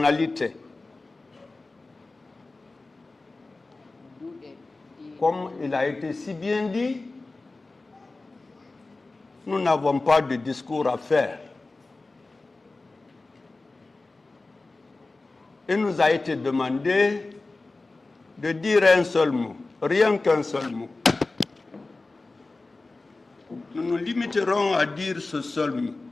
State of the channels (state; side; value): quieter; right; 3.4 dB